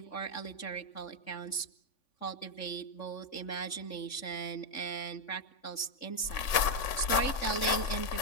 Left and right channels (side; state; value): right; late; 3.5 ms